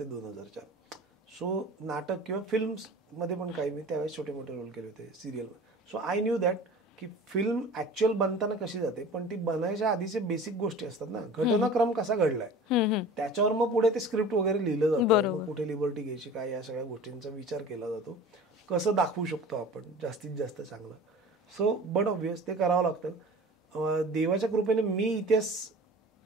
2004. सो नाटक किंवा फिल्म्स मध्ये पण काही मी त्यावेळेस छोटे मोठे रोल केले होते serial. So I knew that की फिल्म ऍक्च्युअल बनताना कशी जाते, पण ती बनायच्या आधीचे बेसिक गोष्टी असतात ना, घटनाक्रम कसा घडलाय त्याच्यावर मग पुढे ते स्क्रिप्ट वगैरे लिहिलं जातं, कुठे लिबर्टी घ्यायची काय, या सगळ्या गोष्टींचा विचार केला जातो, कसं दाखवू शकतो आपण जास्तीत जास्त चांगलं. सो बट ऑब्वियस ते करावं लागतं. देवाच्या कृपेने मी इतिहास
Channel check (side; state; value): both; normal; correlation 0.40